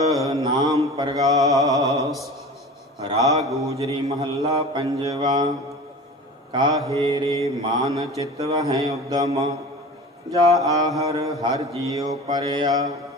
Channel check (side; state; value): both; normal; correlation 0.36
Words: ਨਾਮ ਪ੍ਰਗਾਸ। ਰਾਗ ਗੁਜਰੀ ਮਹੱਲਾ ਪੰਜਵਾ। ਕਾਹੇ ਰੇ ਮਾਨ ਚਿਤ ਵਹਿ ਉਦਮ, ਜਾ ਆਹਰ ਹਰ ਜੀਉ ਪਰਿਆ।